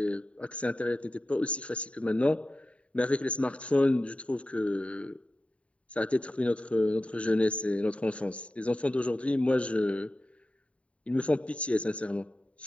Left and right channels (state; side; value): late; right; 0.064 ms